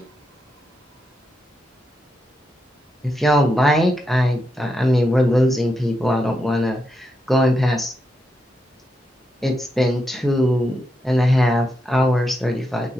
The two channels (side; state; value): both; normal; correlation 0.84